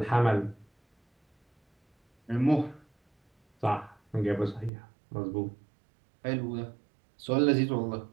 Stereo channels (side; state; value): left; drops out; at 4.7 s